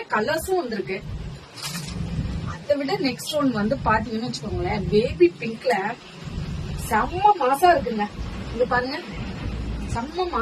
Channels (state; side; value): identical; both; correlation 1.00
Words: கலர்ஸும் வந்திருக்கு. அதை விட நெக்ஸ்ட் ஒன் வந்து பாத்தீங்கன்னு வச்சுக்கோங்களேன், பேபி பிங்க்ல செம்ம மாசா இருக்குங்க. இங்க பாருங்க, செம்ம